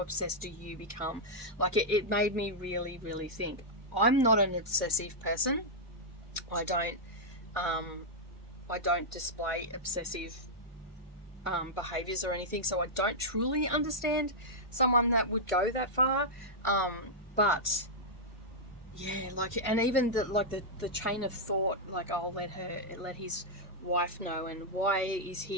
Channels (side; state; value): both; normal; correlation -0.07